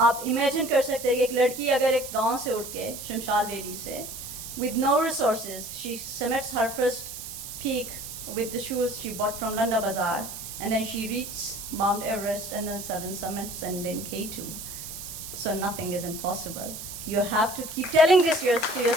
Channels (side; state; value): right; noise; hiss, 9 dB below the sound